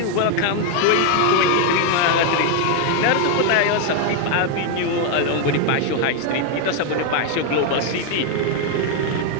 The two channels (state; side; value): different; both; correlation 0.01